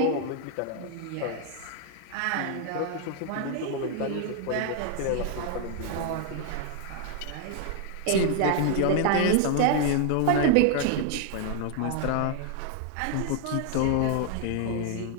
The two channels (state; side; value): different; both; correlation 0.00